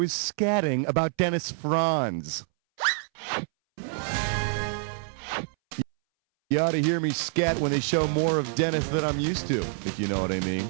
scatting about Dennis Franz. You ought to hear me scat when they show more of Dennis than I'm used to, if you know what I mean.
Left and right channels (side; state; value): left; silent; 60 dB below the other